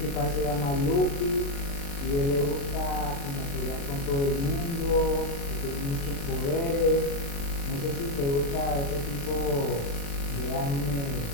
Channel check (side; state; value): right; late; 36 ms